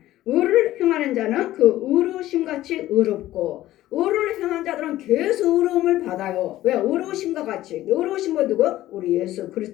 의를 행하는 자는 그 의로우심같이 의롭고 의를 행하는 자들은 계속 의로움을 받아요. 왜? 의로우심과 같이. 의로우심은 누구? 우리 예수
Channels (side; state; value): right; quieter; 14.9 dB